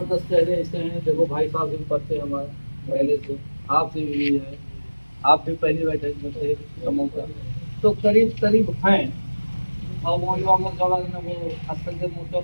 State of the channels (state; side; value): inverted; both; correlation -1.00